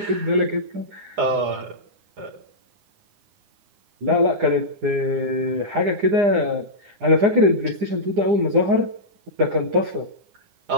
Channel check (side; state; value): left; late; 9.8 ms